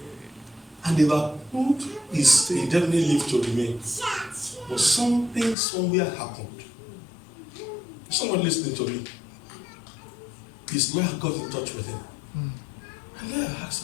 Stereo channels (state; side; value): drops out; right; at 5.6 s